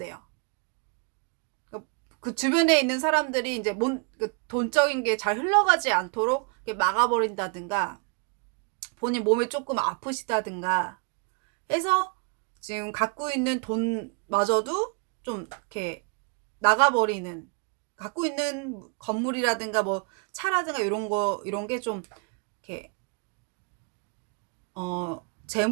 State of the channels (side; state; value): left; quieter; 36.2 dB